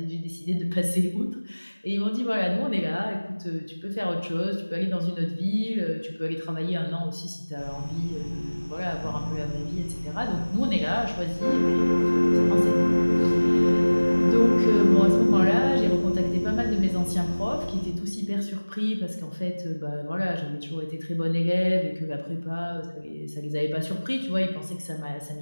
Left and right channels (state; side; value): inverted; both; correlation -1.00